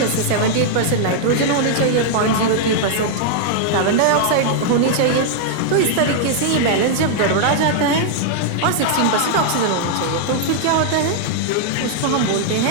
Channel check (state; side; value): different; both; correlation -0.01